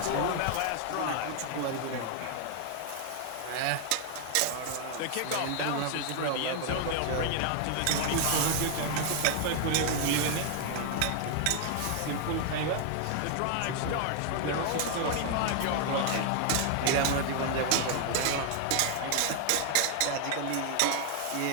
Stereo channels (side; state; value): both; different; correlation 0.00